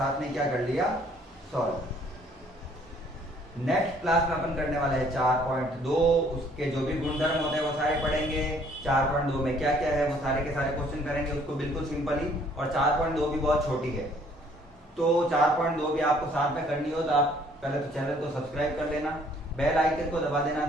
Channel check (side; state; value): both; normal; correlation 0.61